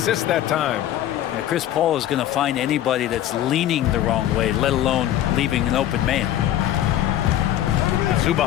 that time. And Chris Paul is going to find anybody that's leaning the wrong way, let alone leaving an open man.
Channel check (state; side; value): quieter; right; 12.3 dB